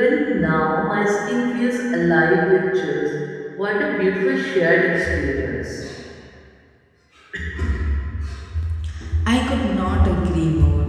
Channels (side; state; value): both; identical; correlation 1.00